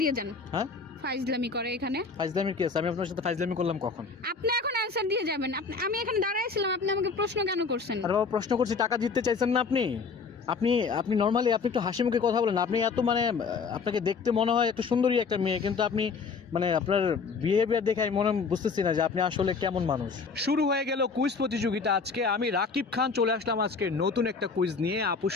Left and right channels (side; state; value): right; quieter; 5.0 dB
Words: দিয়ে যান। হ্যাঁ, ফাইজলামি করে এখানে। ফাইজলামি কি আছে? আমি আপনার সাথে ফাইজলামি করলাম কখন? আপনি এখন অ্যানসার দিয়ে যাবেন। আমি এখানে দাঁড়াইছিলাম, আপনি আমাকে প্রশ্ন কেন করছেন? আরে বাবা, প্রশ্ন করছি, টাকা জিততে চাইছেন না আপনি? আপনি নর্মালি আপনি একটু হাসি মুখে কথা বলেন। আপনি এত মানে আপনাকে দেখতে মনে হয় একটু সুন্দরী একটা মেয়ে, কিন্তু আপনি মানে আপনার বিহেভিয়ার দেখে আমি মনে বুঝতেছি না যে আপনি আসলে কেমন মানুষ। শুরু হয়ে গেল কুইজ প্রতিযোগিতা। আজকে আমি রাকিব খান চলে আসলাম আজকে নতুন একটা কুইজ নিয়ে। আপুর